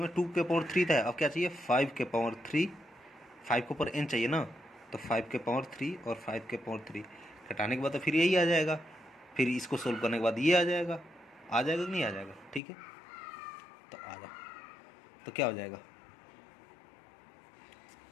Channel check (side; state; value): right; drops out; at 12.6 s